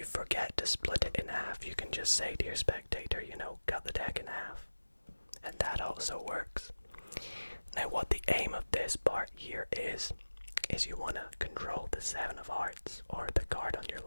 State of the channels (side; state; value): both; inverted; correlation -1.00